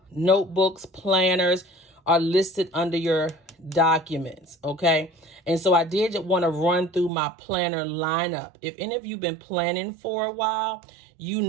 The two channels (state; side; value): drops out; left; at 7.1 s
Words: notebooks, planners are listed under your documents, okay? And so I did want to run through my planner lineup. If any of you have been planning for a while, you